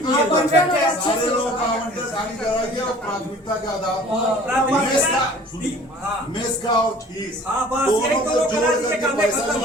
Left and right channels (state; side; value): normal; both; correlation 0.49